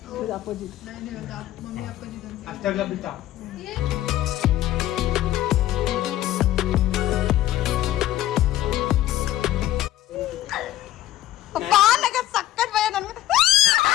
ಇದು ಅಪೋಸಿಟ್ ಮಮ್ಮಿ ಅಪ್ಪಾಜಿ ಅಷ್ಟೆಲ್ಲ ಬಿಟ್ಟ ಅಪ್ಪ ನನಗೆ ಸಕ್ಕತ್ ಭಯ ನನಗೆ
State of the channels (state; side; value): quieter; right; 13.8 dB